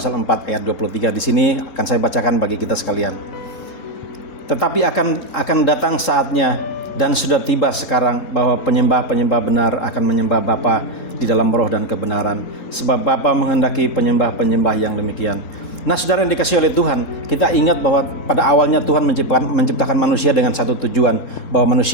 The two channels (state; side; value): late; right; 3.7 ms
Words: 4 ayat 23. Di sini akan saya bacakan bagi kita sekalian. Tetapi akan datang saatnya dan sudah tiba sekarang bahwa penyembah-penyembah benar akan menyembah Bapa di dalam roh dan kebenaran, sebab Bapa menghendaki penyembah-penyembah yang demikian. Nah saudara yang dikasihi oleh Tuhan, kita ingat bahwa pada awalnya Tuhan menciptakan manusia dengan satu tujuan, bahwa